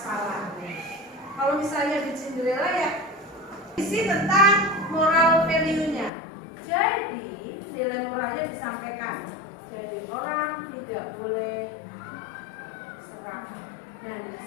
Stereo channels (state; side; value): drops out; right; at 6.1 s